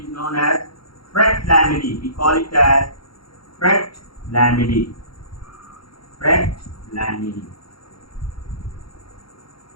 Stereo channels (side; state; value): right; late; 0.75 ms